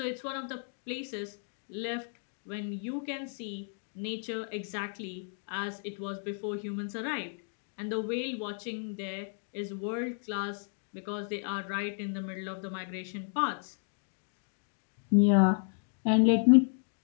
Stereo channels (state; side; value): silent; right; 56 dB below the other